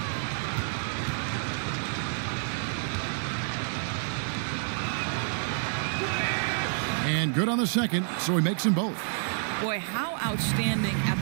And good on the second, so he makes them both. Boy, how outstanding at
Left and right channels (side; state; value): left; silent; 59 dB below the other